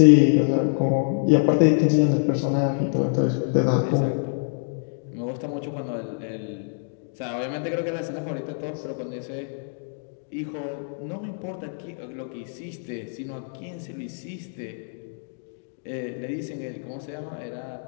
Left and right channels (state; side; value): silent; right; digital silence